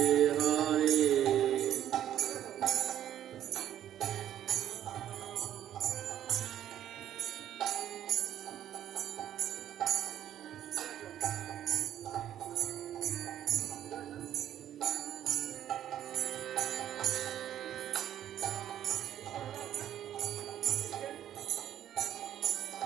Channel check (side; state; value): left; quieter; 11.1 dB